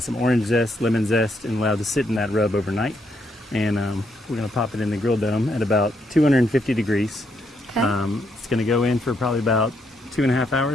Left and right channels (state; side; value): normal; both; correlation 0.76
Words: orange zest, lemon zest, and allowed to sit in that rub overnight. And we're going to pop it in the grill dome at about 250 degrees. Okay. It's going to go in for probably about 2.5